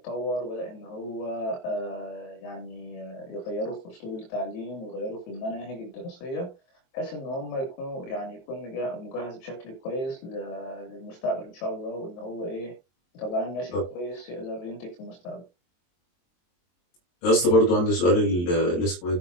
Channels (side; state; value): right; late; 23 ms